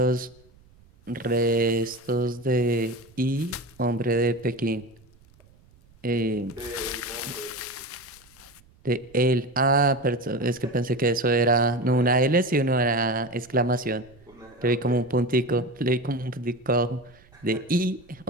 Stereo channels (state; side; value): noise; right; rumble, 28 dB below the sound